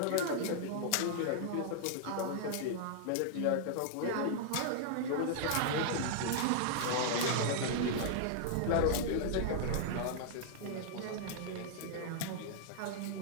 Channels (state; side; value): different; both; correlation -0.01